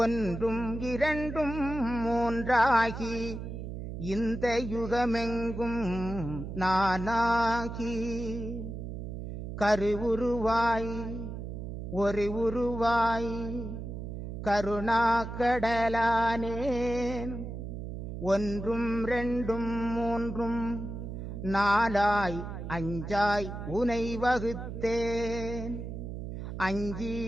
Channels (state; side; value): noise; right; hum, 7 dB below the sound